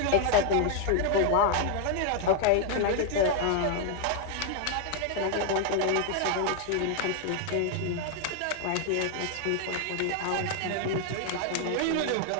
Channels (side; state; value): both; different; correlation 0.00